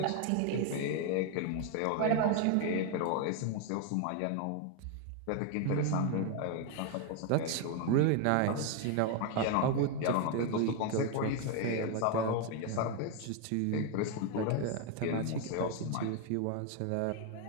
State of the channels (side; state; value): both; different; correlation 0.01